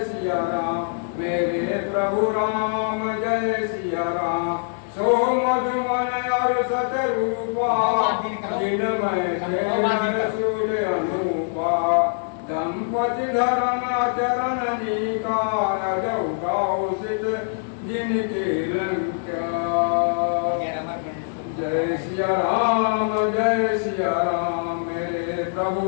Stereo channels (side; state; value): right; silent; digital silence